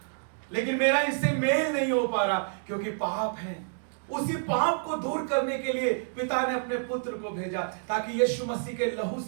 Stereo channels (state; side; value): silent; left; digital silence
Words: लेकिन मेरा इनसे मेल नहीं हो पा रहा क्योंकि पाप है। उसी पाप को दूर करने के लिए पिता ने अपने पुत्र को भेजा, ताकि यीशु मसीह के लहू